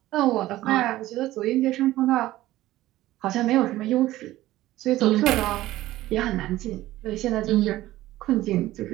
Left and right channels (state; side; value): quieter; left; 15.8 dB